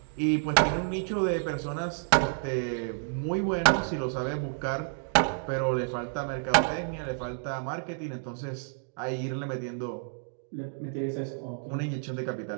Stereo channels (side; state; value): left; silent; digital silence